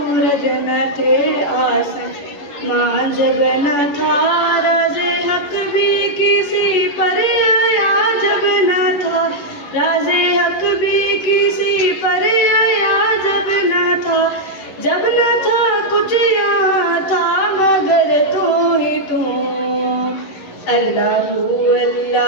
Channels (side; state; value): right; late; 11 ms